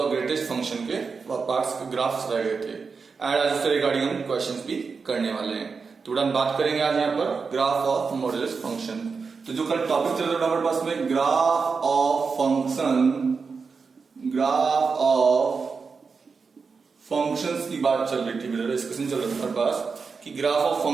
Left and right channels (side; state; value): left; quieter; 5.0 dB